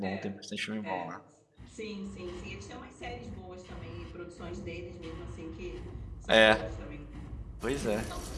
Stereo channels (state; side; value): identical; both; correlation 1.00